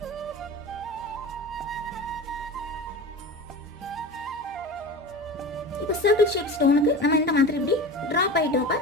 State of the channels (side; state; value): right; noise; hum, 26 dB below the sound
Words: இப்போ சர்க்கிள் ஷேப் ஸ்டோனுக்கு நம்ம இந்த மாதிரி இப்படி ட்ராப் பை ட்ராப்பா